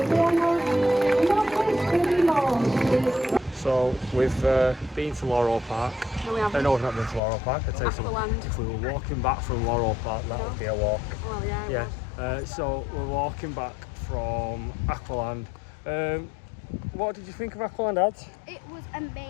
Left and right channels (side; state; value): right; drops out; at 7.2 s